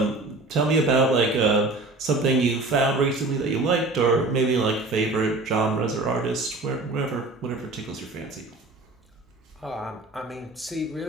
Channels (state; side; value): quieter; left; 3.1 dB